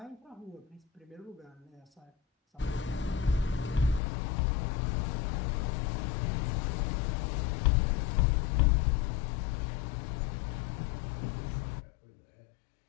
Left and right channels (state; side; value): drops out; right; at 4.0 s